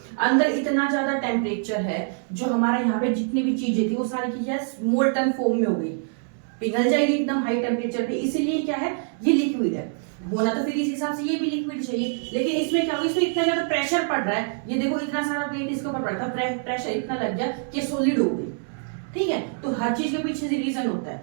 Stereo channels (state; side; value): silent; left; 62 dB below the other